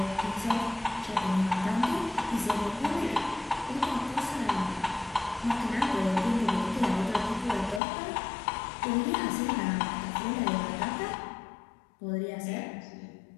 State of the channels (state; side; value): drops out; right; at 7.8 s